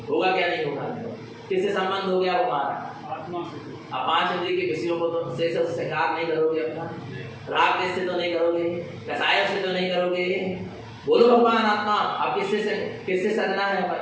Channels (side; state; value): both; identical; correlation 1.00